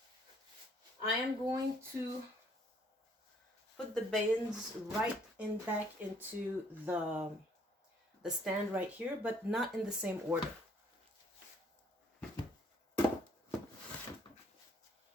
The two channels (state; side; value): normal; both; correlation 0.64